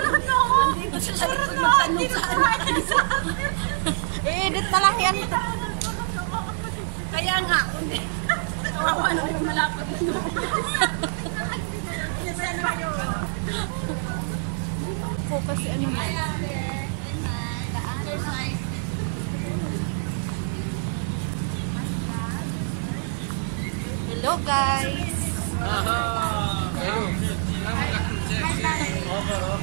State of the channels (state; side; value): silent; left; digital silence